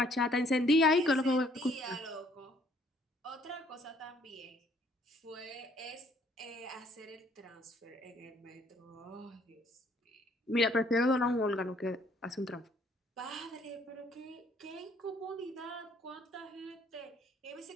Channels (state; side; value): normal; both; correlation 0.63